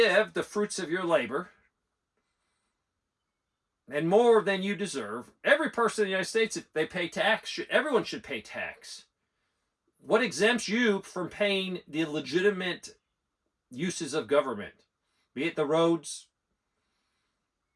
the fruits of your labor and more than you deserve. Every person in the United States, if they pay tax, everyone should pay tax. What exempts you from paying the legitimate uses of government? Be it the roads,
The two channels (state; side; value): identical; both; correlation 1.00